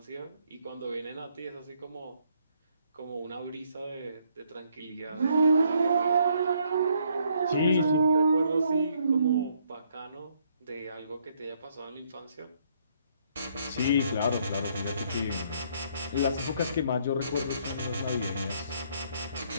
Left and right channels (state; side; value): inverted; both; correlation -0.69